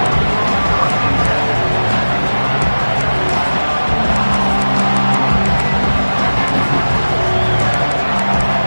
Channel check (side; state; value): both; inverted; correlation -1.00